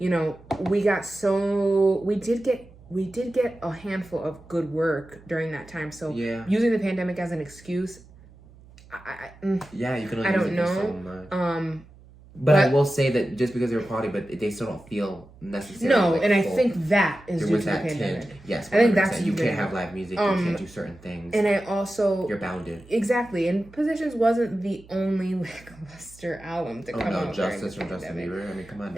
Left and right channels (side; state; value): right; noise; hum, 23 dB below the sound